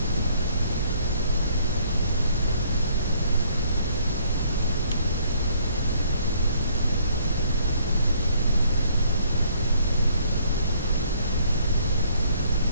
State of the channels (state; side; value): inverted; both; correlation -0.63